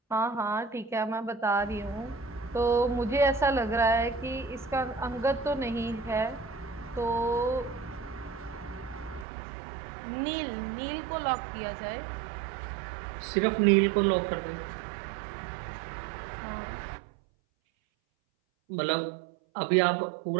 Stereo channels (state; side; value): drops out; left; at 9.2 s